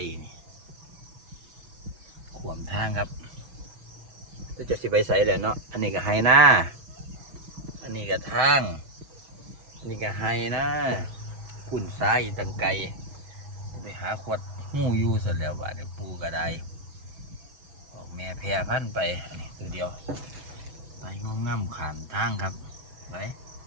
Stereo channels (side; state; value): left; late; 6.2 ms